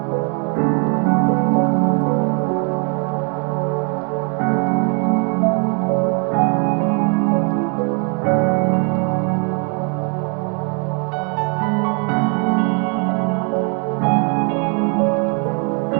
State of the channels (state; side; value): quieter; left; 36.9 dB